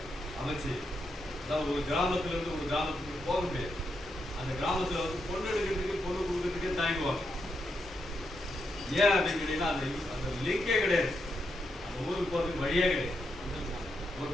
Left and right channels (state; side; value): normal; both; correlation 0.83